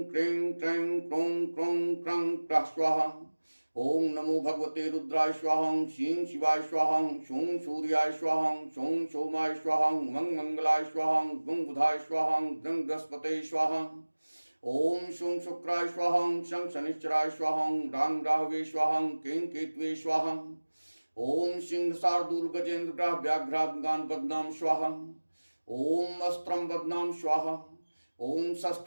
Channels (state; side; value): inverted; both; correlation -1.00